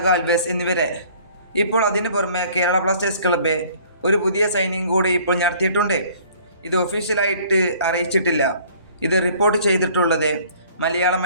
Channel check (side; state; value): both; inverted; correlation -0.54